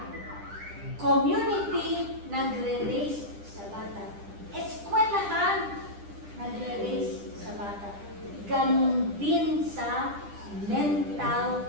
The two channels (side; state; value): left; late; 10 ms